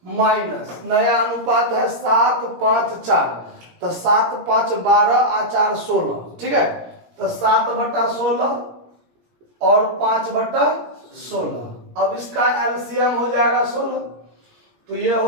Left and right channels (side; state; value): left; late; 17 ms